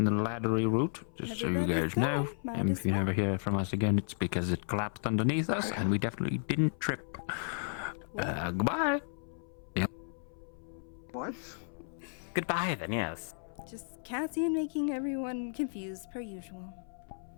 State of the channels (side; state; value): right; silent; 55 dB below the other